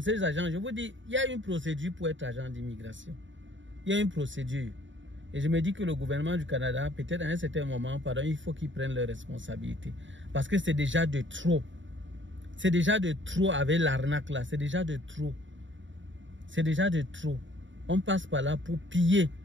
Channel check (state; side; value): late; left; 0.55 ms